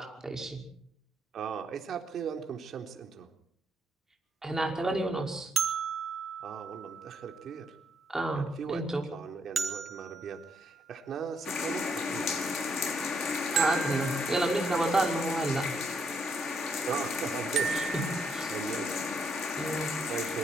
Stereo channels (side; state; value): both; normal; correlation 0.74